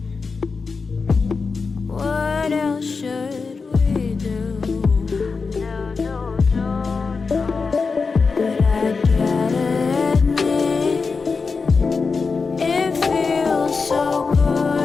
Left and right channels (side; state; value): right; quieter; 4.7 dB